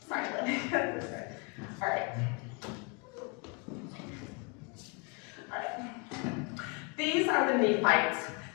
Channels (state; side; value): quieter; right; 32.3 dB